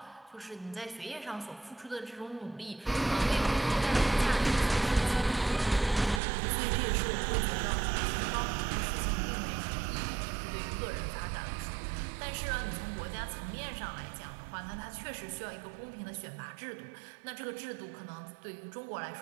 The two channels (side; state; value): left; drops out; at 6.2 s